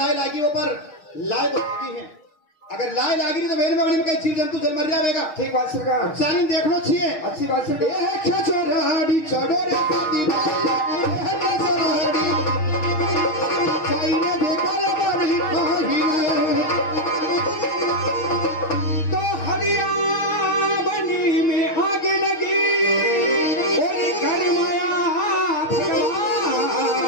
लागी हो पर लाए तो लगी है। अगर लाए लागी नहीं तो मेरे में कई जीव जंतु जल मर जाएगा। ठीक बात सरकार। चालीन देखना चाहिए। अच्छी बात सरकार। छोराड़ी चढ़ो रे शादी तो हरिया बनी में आग लगी और घर माया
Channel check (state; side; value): late; right; 6.5 ms